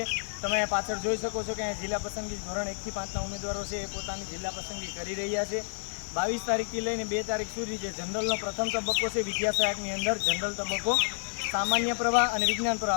તમે પાછળ જોઈ શકો છો કે જિલ્લા પસંદગી ધોરણ 1 થી 5ના ઉમેદવારો છે એ પોતાની જિલ્લા પસંદગી કરી રહ્યા છે। 22 તારીખથી લઈને 2 તારીખ સુધી જે જનરલનો પ્રથમ તબક્કો છે વિદ્યા સહાયકની અંદર જનરલ તબક્કો, સામાન્ય પ્રવાહ અને વિજ્ઞાન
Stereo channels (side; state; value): right; silent; digital silence